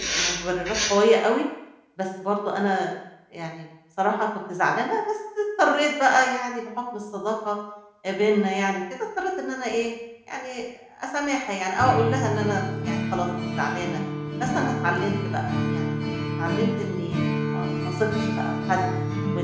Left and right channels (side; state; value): both; identical; correlation 1.00